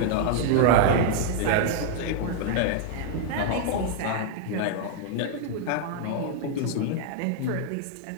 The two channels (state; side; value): different; both; correlation -0.01